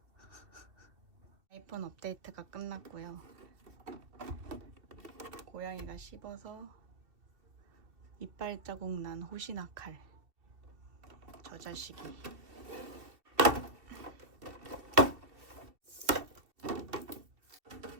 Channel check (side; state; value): left; late; 2.7 ms